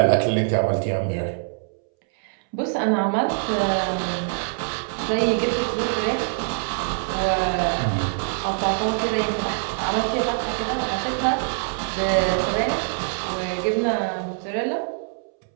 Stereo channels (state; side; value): silent; left; 63 dB below the other